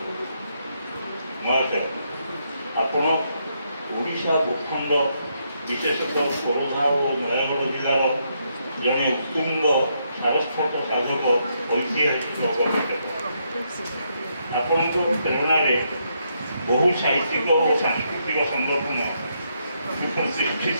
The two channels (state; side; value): inverted; both; correlation -0.77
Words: ମହାଶୟ, ଆପଣ ଓଡ଼ିଶା ଭୂଖଣ୍ଡ ବିଶେଷତଃ ଖୋର୍ଦ୍ଧା ଓ ନୟାଗଡ଼ ଜିଲ୍ଲାର ଜଣେ ଉତ୍ତୁଙ୍ଗ ସାରସ୍ୱତ ସାଧକ ଐତିହାସିକ ଗବେଷକ। ଆପଣଙ୍କ ପ୍ରେରଣାରେ ବହୁ ସାହିତ୍ୟିକ ଓ ସାଂସ୍କୃତିକ ସଂଗଠନ